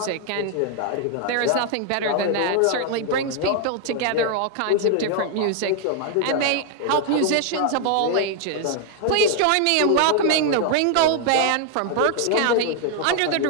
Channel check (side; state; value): both; different; correlation 0.00